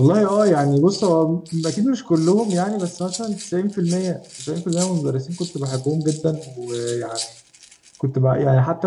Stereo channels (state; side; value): identical; both; correlation 1.00